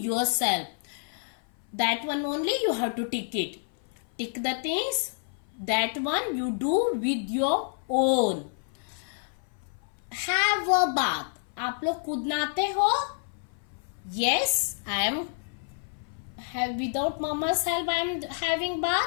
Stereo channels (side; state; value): right; silent; 56 dB below the other